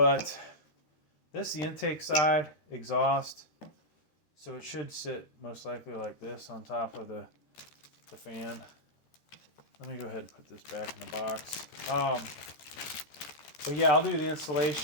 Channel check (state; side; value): late; right; 13 ms